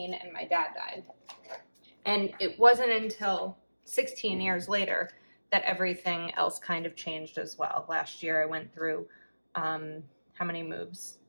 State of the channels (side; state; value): both; inverted; correlation -1.00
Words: and my dad died. And it wasn't until 16 years later that everything else kind of changed as well. Last year I went through, how many moves?